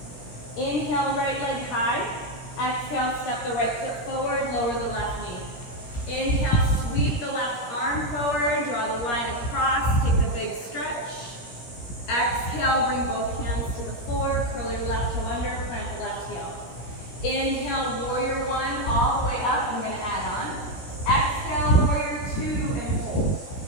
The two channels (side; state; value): right; late; 17 ms